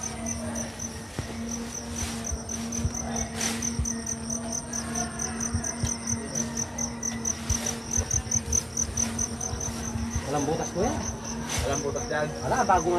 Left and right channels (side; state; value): both; identical; correlation 1.00